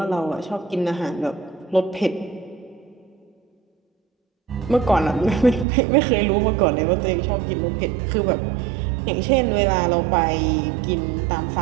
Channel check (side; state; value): left; drops out; at 5.7 s